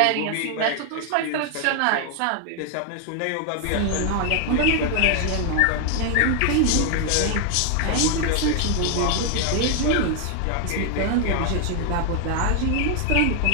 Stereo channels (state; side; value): different; both; correlation 0.00